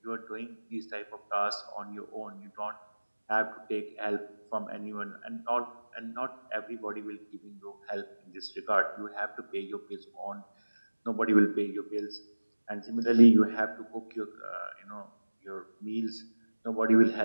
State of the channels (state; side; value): inverted; both; correlation -1.00